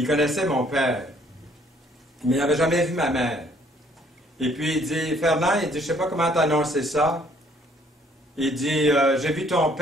connaissait mon père, mais il n'avait jamais vu ma mère. Et puis il dit, Fernand, il dit, je ne sais pas comment t'annoncer ça. Il dit, j'ai vu ton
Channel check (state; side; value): normal; both; correlation 0.62